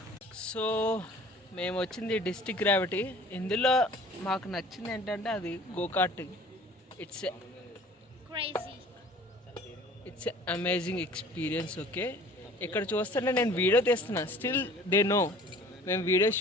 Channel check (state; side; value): normal; both; correlation 0.48